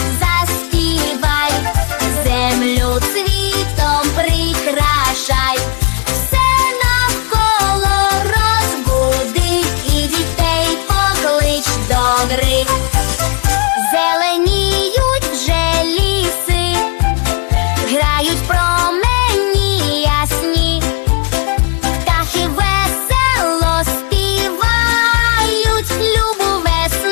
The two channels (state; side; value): quieter; right; 35.4 dB